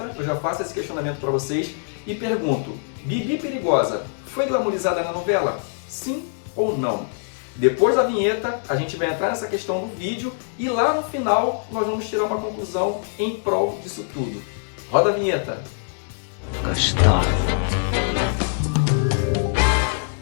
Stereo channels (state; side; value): silent; right; 63 dB below the other